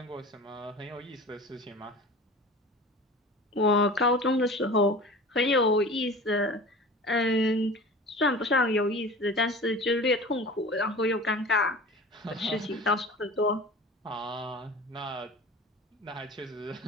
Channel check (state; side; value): normal; both; correlation 0.38